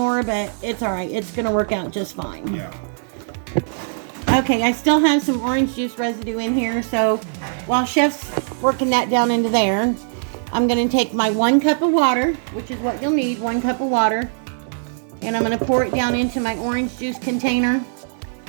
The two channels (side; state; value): left; silent; digital silence